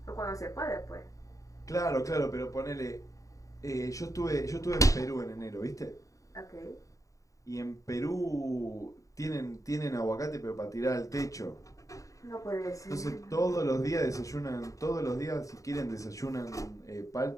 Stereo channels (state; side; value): late; right; 0.16 ms